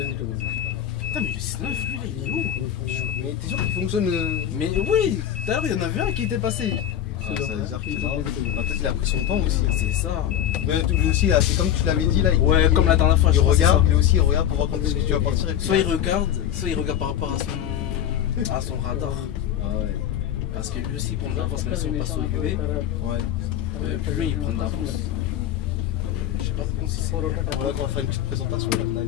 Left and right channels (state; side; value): quieter; right; 10.6 dB